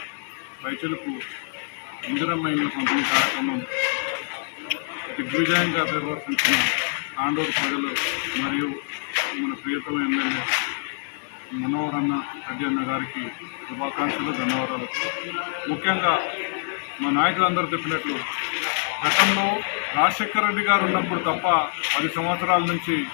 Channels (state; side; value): silent; right; digital silence